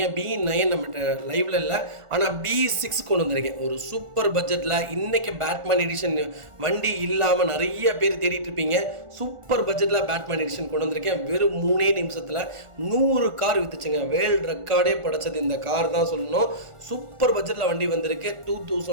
BE9 நம்மகிட்ட லைவ்ல இல்லை, ஆனால் BE6 கொண்டு வந்திருக்கேன். ஒரு சூப்பர் பட்ஜெட்டில் இன்னைக்கு பேட்மேன் எடிஷன் வண்டி இல்லாமல் நிறைய பேர் தேடிட்டு இருப்பீங்க. சூப்பர் பட்ஜெட்டில் பேட்மேன் எடிஷன் கொண்டு வந்திருக்கேன். வெறும் 3 நிமிஷத்தில் 100 கார் வித்துச்சுங்க. வேர்ல்டு ரெக்கார்டே படைச்சது இந்த கார் தான் சொல்லணும். சூப்பர் பட்ஜெட்டில் வண்டி வந்திருக்கு.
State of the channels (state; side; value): late; left; 1.4 ms